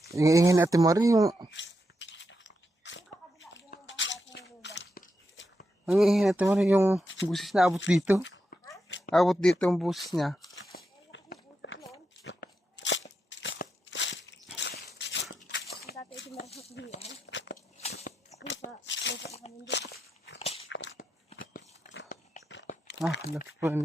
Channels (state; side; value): normal; both; correlation 0.85